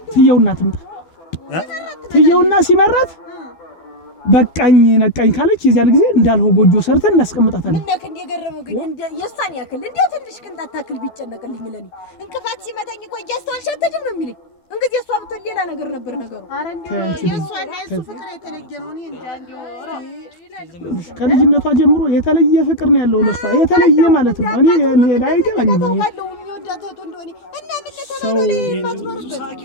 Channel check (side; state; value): right; late; 12 ms